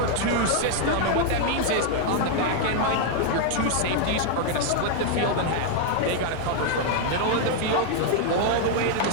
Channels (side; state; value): both; different; correlation 0.00